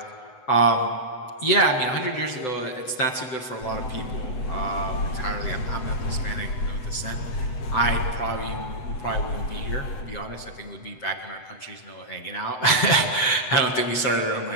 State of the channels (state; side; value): late; right; 7.9 ms